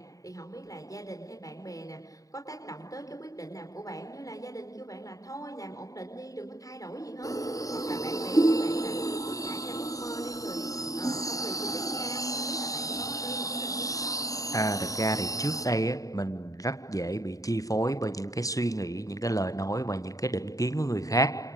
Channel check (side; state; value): right; late; 0.16 ms